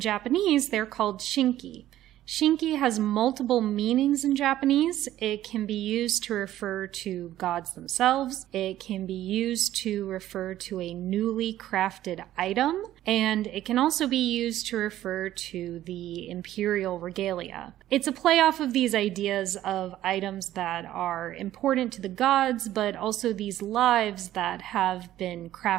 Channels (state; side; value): quieter; left; 13.4 dB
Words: they're called shinki. Shinki has multiple meanings in Japanese. It can be used to refer to gods themselves. It can be used to refer to a newly crafted item. And it can also be used to refer to the imperial regalia. It's a play off of these ideas of items that are important to the gods, but also these lives that have been